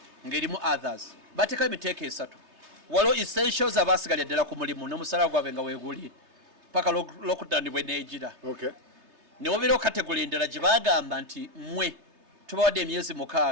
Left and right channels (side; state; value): left; late; 3.3 ms